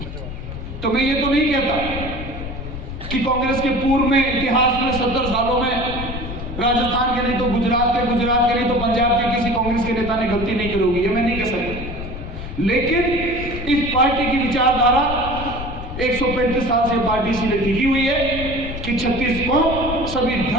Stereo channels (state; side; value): noise; left; rumble, 8 dB below the sound